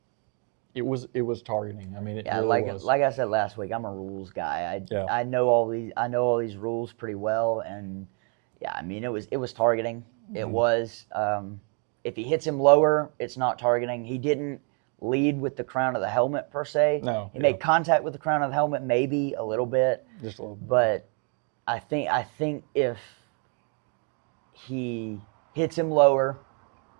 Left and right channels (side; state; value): left; quieter; 39.0 dB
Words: it was targeting. I mean, it really was. Like I said last week, I'm a rules guy. I know all these rules pretty well, and I mean, it was targeting. It was. If he hits him lower, it's not targeting. He didn't lead with the crown of the helmet per se. No, he made contact with the crown of the helmet, maybe a little bit. Just a little bit. But I think if he hits him lower,